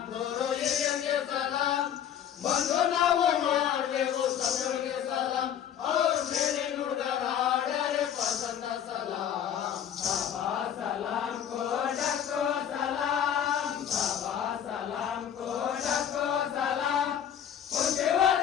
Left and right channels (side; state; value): right; quieter; 9.4 dB